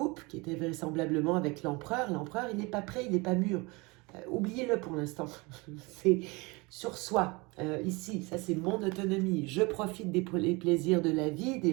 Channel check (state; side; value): quieter; left; 25.9 dB